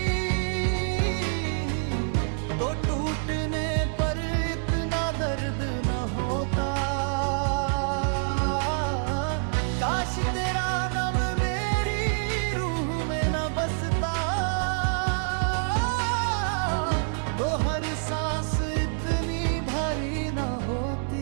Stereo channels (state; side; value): silent; left; digital silence